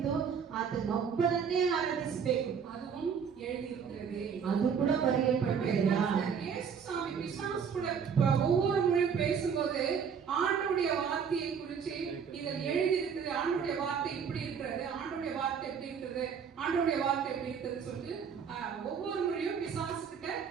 ಆತನೊಬ್ಬನನ್ನೇ ಆರಾಧಿಸಬೇಕು. அதுவும் எழுதியிருக்கிறது. ಅದು ಕೂಡ ಬರೆಯಲ್ಪಟ್ಟಿದೆ. இயேசுசாமி பிசாசு கூட ஒவ்வொரு முறையும் பேசும்போது ஆண்டவருடைய வார்த்தையை குறித்து இதில் எழுதியிருக்கிறது. ஆண்டவருடைய வார்த்தை இப்படி இருக்கிறது, ஆண்டவருடைய வார்த்தை எப்படி இருக்கிறது, ஆண்டவருடைய வார்த்தை எப்படி இருக்கிறது சொல்லிட்டு ஒவ்வொரு முறையும் பிசாசு கிட்ட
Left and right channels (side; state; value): left; quieter; 6.8 dB